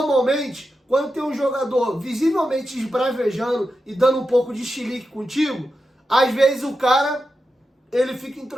quando tem um jogador visivelmente esbravejando e dando um pouco de chilique contigo, às vezes o cara, ele fica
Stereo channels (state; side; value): normal; both; correlation 0.89